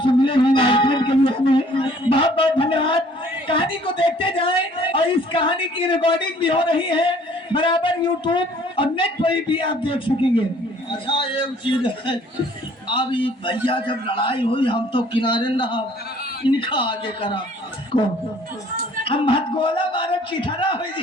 मिले हैं आयोजन के लिए। हमें बहुत बहुत धन्यवाद। कहानी को देखते जाएं और इस कहानी की रिकॉर्डिंग भी हो रही है। बराबर यूट्यूब और नेट पर भी आप देख सकेंगे। अच्छा एक चीज है, अब ये भैया जब लड़ाई हुई हम तो किनारे न रहा, इनका आगे करा को हम हथगोला मारे चिथरा हो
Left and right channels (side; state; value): both; normal; correlation 0.57